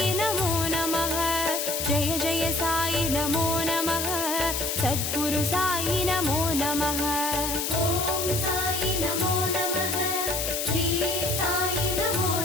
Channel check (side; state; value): left; noise; hiss, 1 dB below the sound